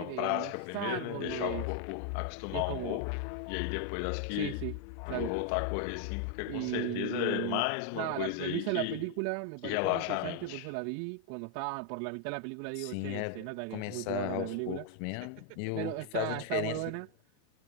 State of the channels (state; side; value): different; both; correlation 0.00